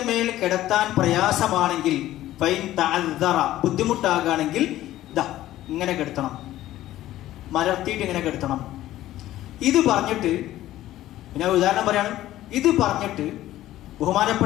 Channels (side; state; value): right; quieter; 14.4 dB